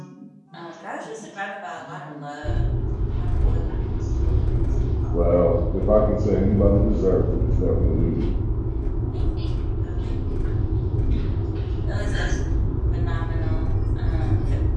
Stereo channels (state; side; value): identical; both; correlation 1.00